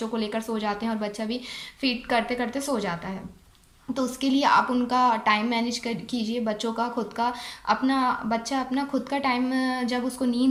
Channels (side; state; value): both; identical; correlation 1.00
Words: को लेकर सो जाते हैं और बच्चा भी फीड करते करते सो जाता है। तो उसके लिए आप उनका टाइम मैनेज कर कीजिए। बच्चों का खुद का अपना बच्चा अपना खुद का टाइम, जब उसको